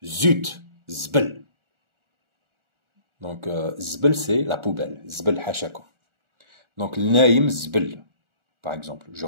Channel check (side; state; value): left; late; 1.4 ms